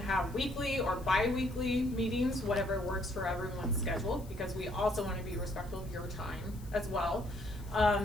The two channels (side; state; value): left; noise; hiss, 23 dB below the sound